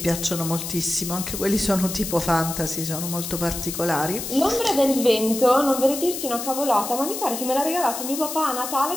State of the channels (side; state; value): left; noise; hiss, 6 dB below the sound